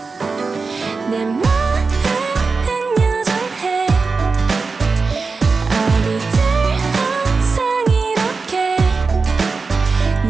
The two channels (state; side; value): quieter; left; 4.4 dB